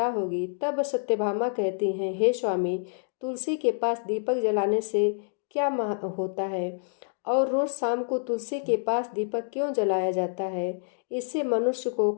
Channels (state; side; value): silent; right; digital silence